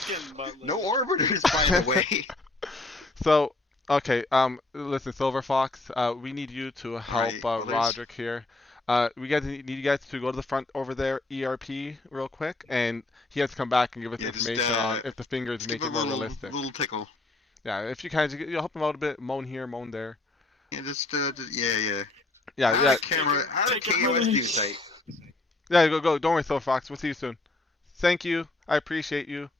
butler. No orbiters, by the way. So, okay, listen, Silver Fox, we need you to help Right, others? Roderick here. We guys need you guys to go to the front over there, ERP, real quick, and he has to come back and give us Yeah, just, information on if the fingers Just make give it a more little, realistic. little tickle. Yeah, if you can, you'll help him out a bit, moan here, moan there. Yeah, yeah. Yeah, Out of yeah, camera, out of Take it KOS away. news site. yeah. Go. Don't worry, Silver Fox. We'll see you soon. Thank you. I appreciate you.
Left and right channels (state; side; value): quieter; right; 3.0 dB